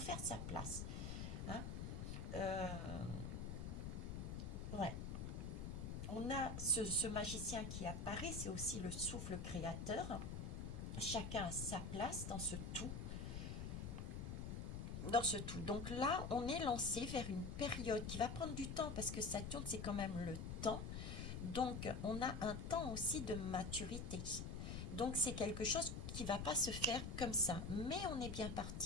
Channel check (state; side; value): noise; left; rumble, 4 dB below the sound